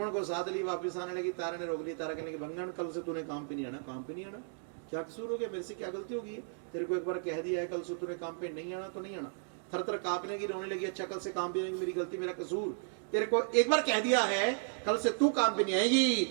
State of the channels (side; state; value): left; silent; digital silence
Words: को साथ ली, वापिस आने लगी। तारा ने रोक ली। तारा कहने लगी, भंगन कल से तूने काम पे नहीं आना। काम पे नहीं आना? क्या कसूर हो गया? मेरे से क्या गलती होगी? तेरे को एक बार कह दिया है, कल से तूने काम पे नहीं आना तो नहीं आना। थर थर कांपने की, रोने लगी। अच्छा कल से काम पे नहीं, मेरी गलती, मेरा कसूर। तेरे को एक बार कह दिया है, कल से तू काम पे नहीं आएगी,